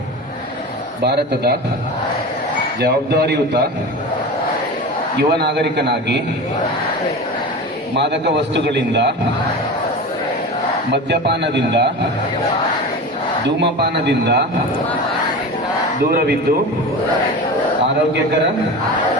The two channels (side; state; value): both; normal; correlation 0.29